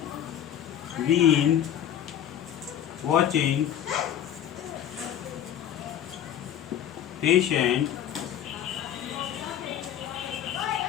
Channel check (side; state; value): right; quieter; 10.3 dB